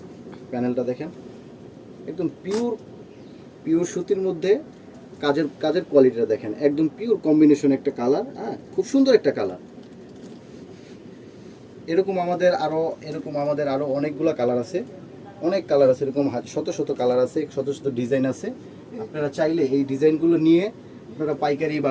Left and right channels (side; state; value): both; identical; correlation 1.00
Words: প্যানেলটা দেখেন, একদম পিওর পিওর সুতির মধ্যে কাজের কাজের কোয়ালিটিটা দেখেন, একদম পিওর কম্বিনেশন একটা কালার। হ্যাঁ, খুব সুন্দর একটা কালার। এরকম আমাদের আরও অনেকগুলো কালার আছে, অনেক কালার আছে, এরকম শত শত কালার আছে, শত শত ডিজাইন আছে। আপনারা চাইলে এই ডিজাইনগুলো নিয়ে আপনারা পাইকারি